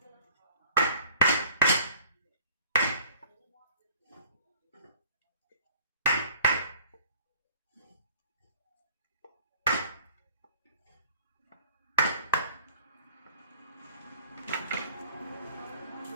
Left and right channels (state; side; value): inverted; both; correlation -0.52